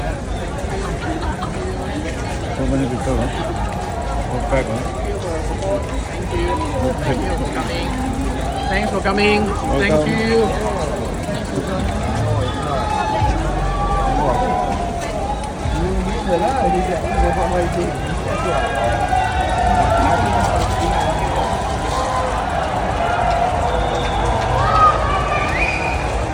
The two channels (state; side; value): identical; both; correlation 1.00